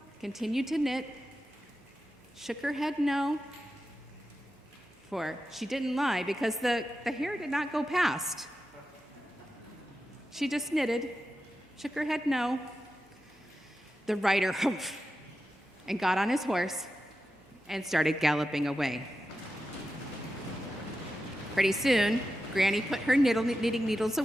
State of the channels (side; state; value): both; normal; correlation 0.91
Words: continued to knit, shook her head no, for she didn't lie because the hare did not go past. She just knitted, shook her head no. The rider humphed and got on his horse and started galloping away. Pretty soon, Granny put her knitting needles